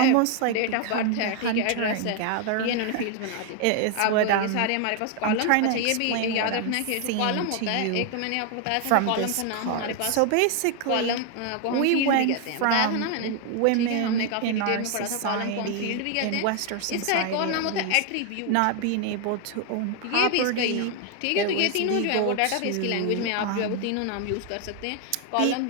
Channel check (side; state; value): both; different; correlation 0.00